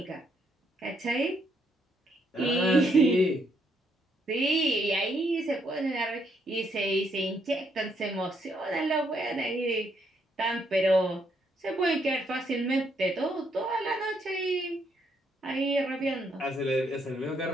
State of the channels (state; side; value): normal; both; correlation 0.73